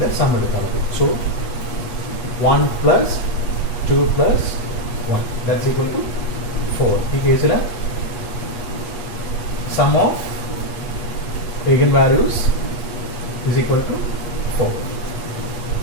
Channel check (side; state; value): right; late; 8.4 ms